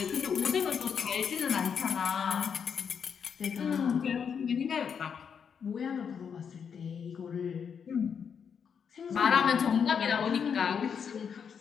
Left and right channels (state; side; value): quieter; right; 7.0 dB